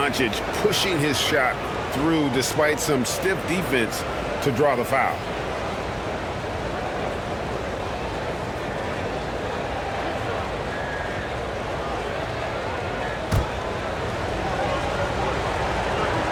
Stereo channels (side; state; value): both; identical; correlation 1.00